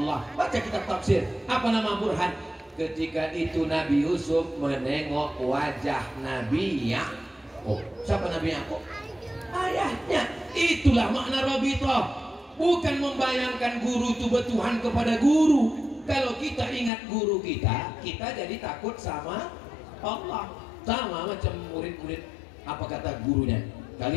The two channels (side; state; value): right; drops out; at 16.9 s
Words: Baca kitab tafsir. Apa nama burhan? Ketika itu Nabi Yusuf menengok wajah Nabi Yakub. Siapa Nabi Yakub? Ayahnya. Itulah makna rabithah. Bukan membayangkan guru itu bertuhan kepada guru. Kalau kita ingat guru kita, kita jadi takut sama Allah. Sama macam murid-murid. Apa kata gurunya?